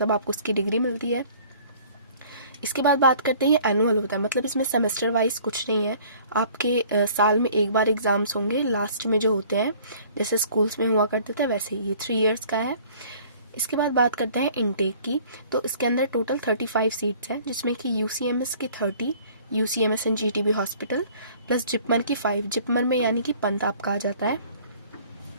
आपको इसकी डिग्री मिलती है। इसके बाद बात करते हैं, ये एनुअल होता है, मतलब इसमें सेमेस्टर वाइज कुछ नहीं है। आपके साल में एक बार एग्जाम्स होंगे लास्ट में जो होते हैं, जैसे स्कूल्स में हुआ करते थे वैसे ये 3 ईयर्स का है। इसके बाद बात करते हैं इनटेक की। तो इसके अंदर टोटल 35 सीट्स हैं, जिसमें कि यूसीएमएस की 30, UCMS and GTB hospital plus JIPMER की 5। जिपमर में यानी कि पंत आपका आ जाता है।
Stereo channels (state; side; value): inverted; both; correlation -0.53